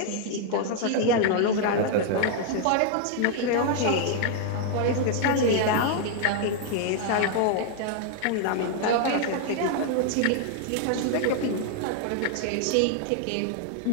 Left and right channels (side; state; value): both; different; correlation 0.00